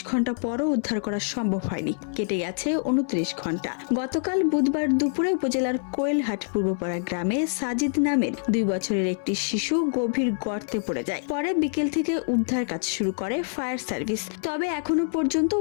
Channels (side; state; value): right; silent; 60 dB below the other